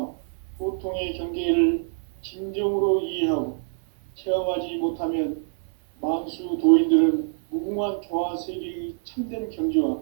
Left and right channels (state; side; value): silent; left; digital silence